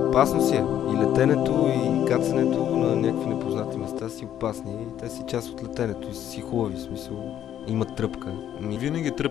опасно си е. И летенето, и кацането на някакви непознати места си опасни. И те си част от летенето и си хубави, в смисъл. Имат тръпка. Винаги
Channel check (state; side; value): quieter; right; 10.7 dB